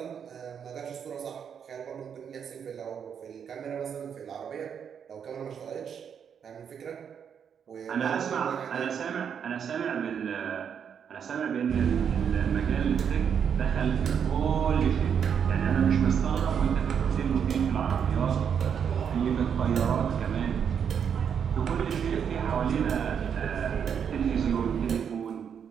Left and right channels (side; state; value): left; quieter; 7.6 dB